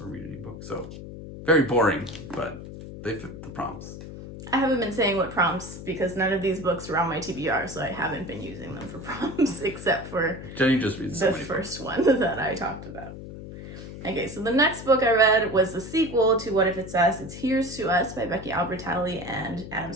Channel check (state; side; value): noise; left; hum, 12 dB below the sound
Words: or read an ebook. So very boring, but they fit the prompts. I haven't been saying what prompts because none of these books were on my TBR, so I haven't been using them for prompts except for Jenny just reads the first one that I talked about. Okay, so the next book I read was the sequel to What If It's Us? It's Here's to Us by Becky Albertalli and Adam